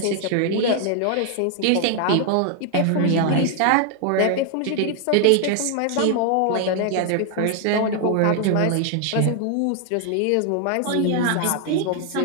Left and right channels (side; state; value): both; different; correlation 0.00